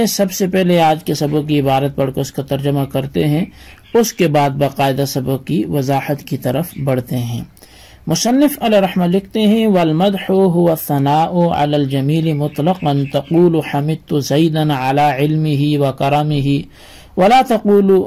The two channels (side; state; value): both; identical; correlation 1.00